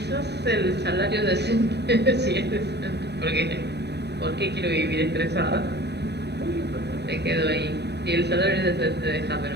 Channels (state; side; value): late; left; 0.49 ms